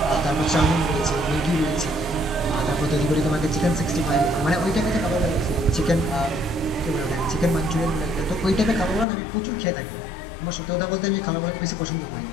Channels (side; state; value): right; drops out; at 9.1 s